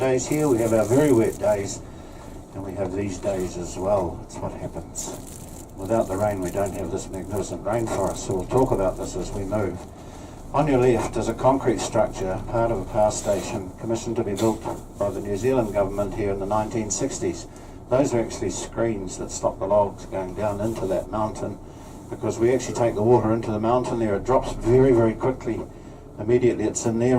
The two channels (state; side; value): identical; both; correlation 1.00